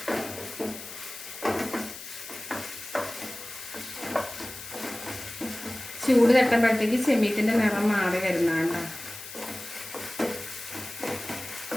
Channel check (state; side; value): noise; left; hiss, 12 dB below the sound